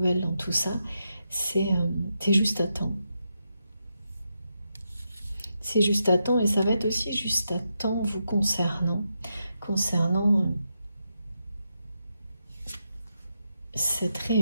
dans tout ça, c'est juste à temps. C'est juste à temps et ça va être aussi juste à temps vous concernant cette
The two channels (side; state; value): both; inverted; correlation -0.85